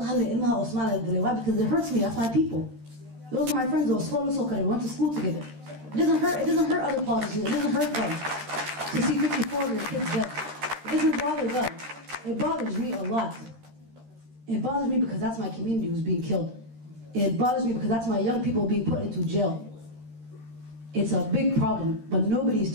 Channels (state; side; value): late; left; 13 ms